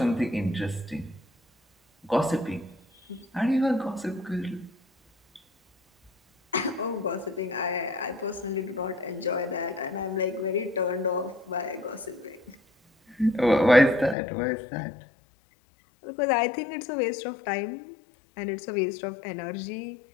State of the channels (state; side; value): drops out; right; at 14.2 s